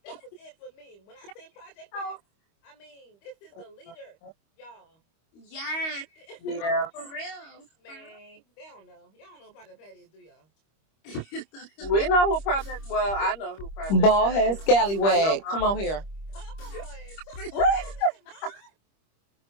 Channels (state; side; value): late; right; 25 ms